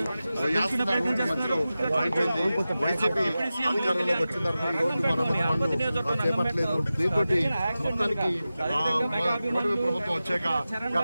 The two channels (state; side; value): inverted; both; correlation -0.95